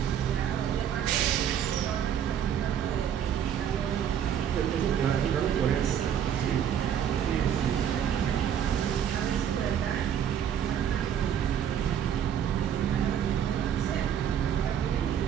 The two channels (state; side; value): quieter; left; 9.1 dB